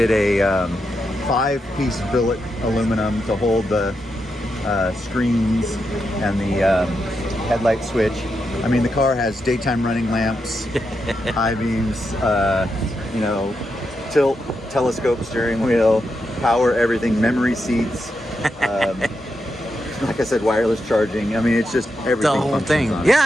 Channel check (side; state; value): both; normal; correlation 0.85